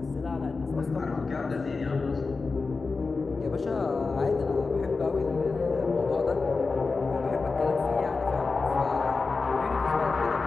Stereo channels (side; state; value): right; quieter; 4.2 dB